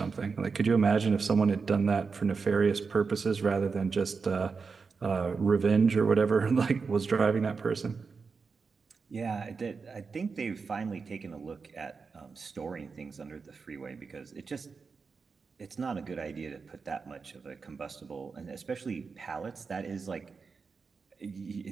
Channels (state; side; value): quieter; left; 5.0 dB